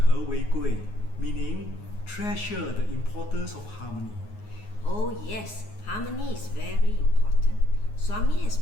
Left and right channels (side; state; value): right; late; 9.5 ms